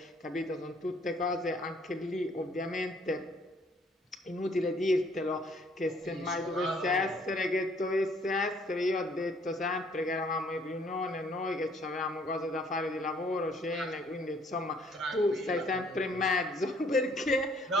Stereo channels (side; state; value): both; normal; correlation 0.62